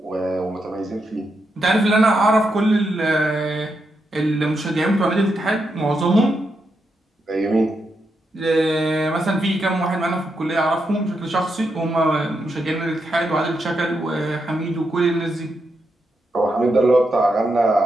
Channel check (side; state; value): both; normal; correlation 0.83